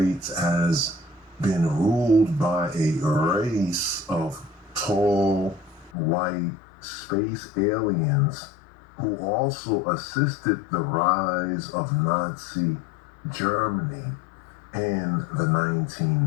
has been ruled by a race of tall, white space aliens who also assisted the rise of Nazi Germany in the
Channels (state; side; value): drops out; right; at 5.9 s